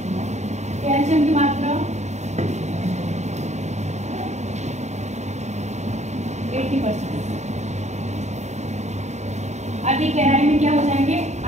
कैल्शियम की मात्रा 80%। अधिक गहराई में क्या हो जाएंगे?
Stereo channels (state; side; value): late; left; 0.33 ms